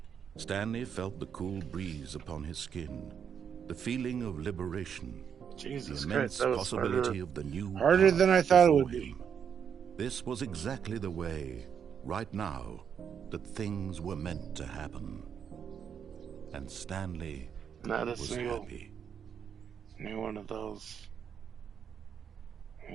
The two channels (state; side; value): quieter; left; 7.6 dB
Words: Stanley felt the cool breeze upon his skin, the feeling of liberation, Jesus the immense Christ, that was possibility of the new harder path than I thought it before would be. him. This was exactly the way, right now, that things were meant to happen. And Stanley Not a was single happy. new one of those.